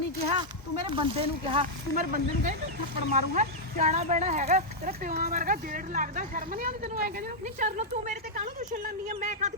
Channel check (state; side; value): normal; both; correlation -0.05